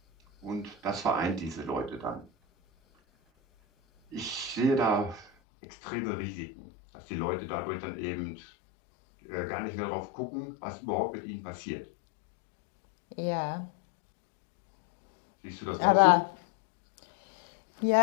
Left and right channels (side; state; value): right; drops out; at 5.3 s